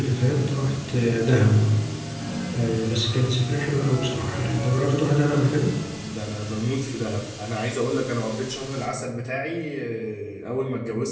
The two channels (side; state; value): both; identical; correlation 1.00